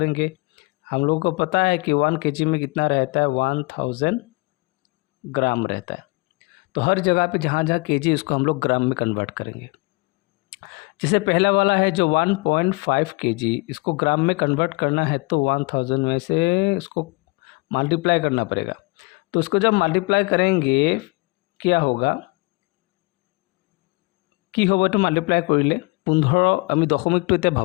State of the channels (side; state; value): right; quieter; 26.6 dB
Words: हम लोगों को पता है कि 1 kg में कितना रहता है, 1000 ग्राम रहता है। तो हर जगह पे जहाँ जहाँ kg उसको हम लोग ग्राम में कन्वर्ट करेंगे। जैसे पहला वाला है जो 1.5 kg, इसको ग्राम में कन्वर्ट करना है तो 1000 में से इसको मल्टीप्लाई करना पड़ेगा। तो उसको जब मल्टीप्लाई करेंगे क्या होगा, কি হ'ব এইটো মাল্টিপ্লাই কৰিলে 15, আমি দশমিকটো এতিয়া